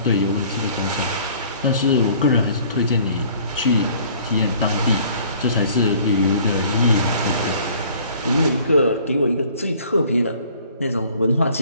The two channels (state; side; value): inverted; both; correlation -0.54